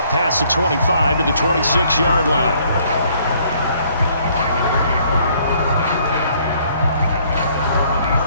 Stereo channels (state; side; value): inverted; both; correlation -0.63